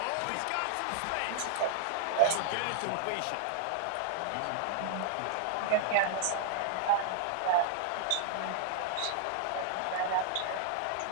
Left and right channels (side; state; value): both; different; correlation -0.01